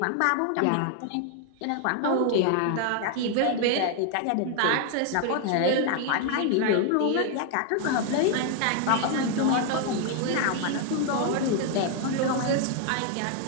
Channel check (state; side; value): different; both; correlation 0.00